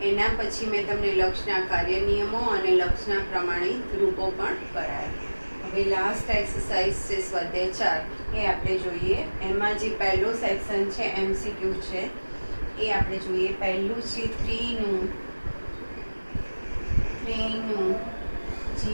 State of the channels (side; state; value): both; inverted; correlation -1.00